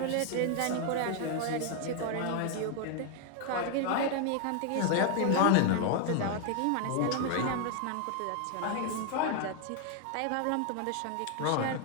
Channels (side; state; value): both; different; correlation 0.00